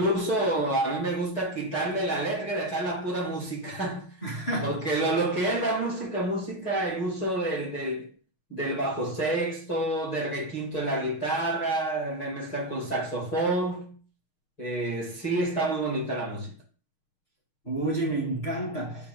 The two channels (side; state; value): right; late; 6.5 ms